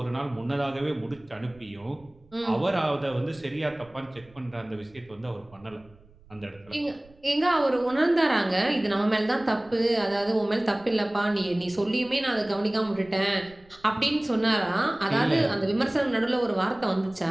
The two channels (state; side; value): noise; right; rumble, 27 dB below the sound